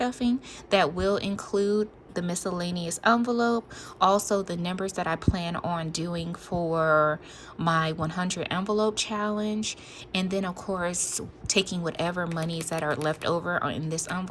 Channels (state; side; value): identical; both; correlation 1.00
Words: that will include the miscellaneous envelope, also the numbers that I plan on doing for my 100 envelope challenge, and then of course taking whatever monies that are left over in this